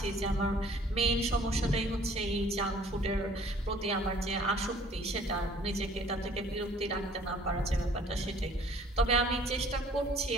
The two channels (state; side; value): normal; both; correlation 0.54